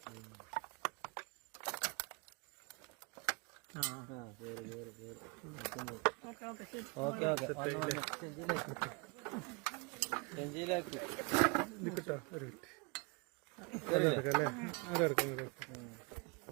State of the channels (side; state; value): left; quieter; 30.7 dB